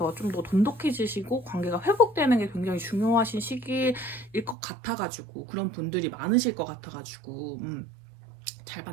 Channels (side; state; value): left; drops out; at 4.5 s